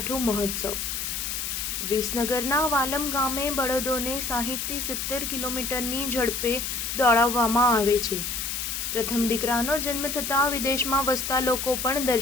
મહોત્સવ. વિસનગરના વાલમ ગામે બળદોને 60થી 70 કિલોમીટરની ઝડપે દોડાવવામાં આવે છે. પ્રથમ દીકરાનો જન્મ થતાં વિદેશમાં વસતા લોકો પણ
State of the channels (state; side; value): noise; left; hiss, 3 dB below the sound